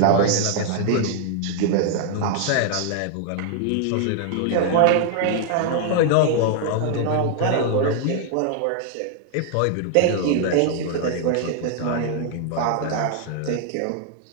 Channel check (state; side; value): different; both; correlation 0.00